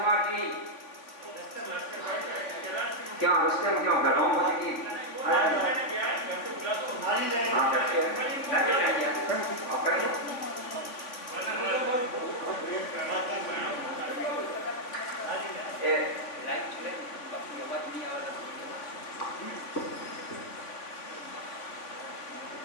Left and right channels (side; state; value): right; late; 3.5 ms